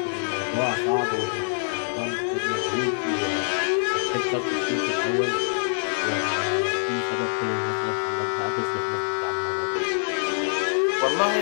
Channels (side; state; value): right; silent; digital silence